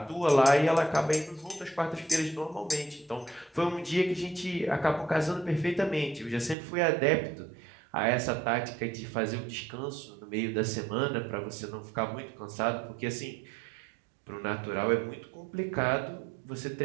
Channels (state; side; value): drops out; left; at 6.6 s